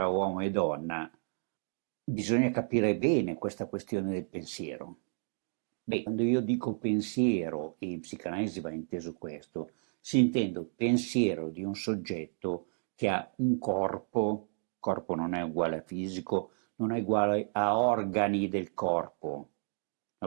uomo e donna bisogna capire bene questa questione del pensiero. Beh, quando io dico pensiero, e in psicanalisi va inteso questo, si intende pensiero di un soggetto che ha un corpo non è uguale a fisico, non è uguale a organi del corpo, è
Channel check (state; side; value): silent; left; digital silence